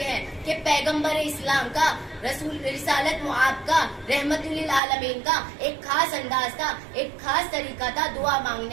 ہیں کہ پیغمبر اسلام کا رسول رسالت معاب کا رحمت للعالمین کا ایک خاص انداز تھا, ایک خاص طریقہ تھا دعا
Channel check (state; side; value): drops out; left; at 4.8 s